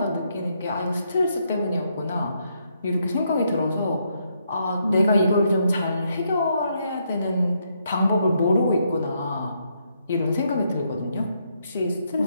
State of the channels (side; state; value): both; inverted; correlation -0.76